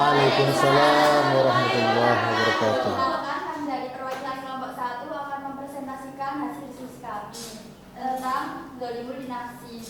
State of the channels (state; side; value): identical; both; correlation 1.00